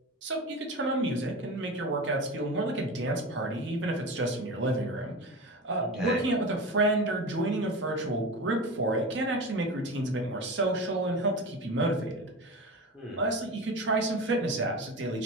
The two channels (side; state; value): both; normal; correlation 0.28